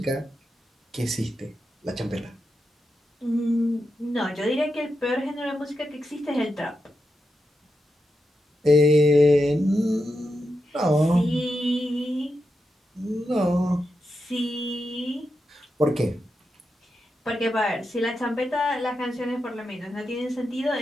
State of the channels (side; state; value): both; normal; correlation 0.87